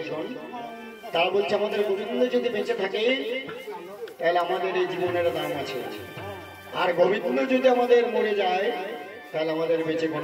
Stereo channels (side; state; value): both; identical; correlation 1.00